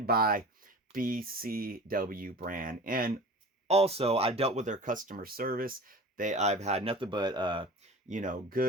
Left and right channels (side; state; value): both; normal; correlation 0.38